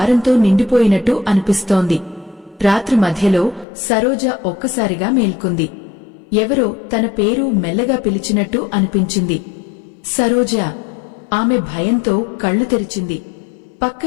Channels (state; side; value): drops out; right; at 3.7 s